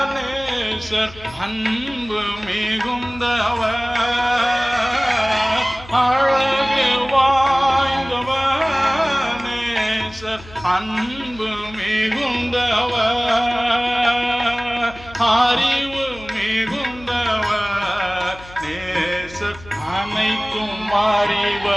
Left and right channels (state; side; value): noise; left; hum, 19 dB below the sound